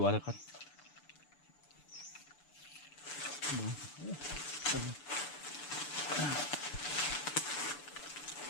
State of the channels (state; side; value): late; right; 6.9 ms